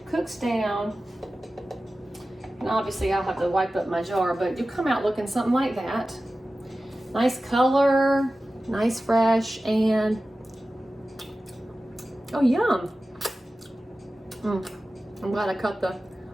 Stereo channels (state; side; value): normal; both; correlation 0.95